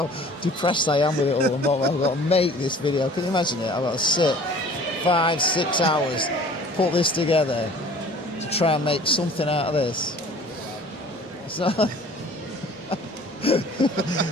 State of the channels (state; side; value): normal; both; correlation 0.48